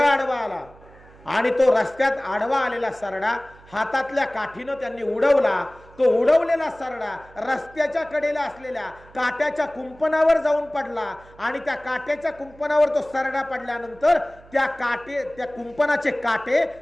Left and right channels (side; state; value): right; noise; hum, 24 dB below the sound